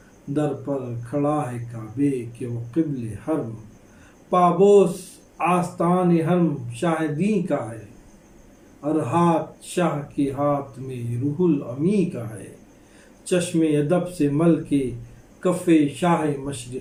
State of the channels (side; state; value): both; identical; correlation 1.00